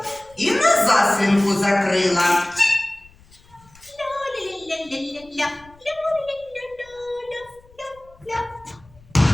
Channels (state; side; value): noise; left; rumble, 27 dB below the sound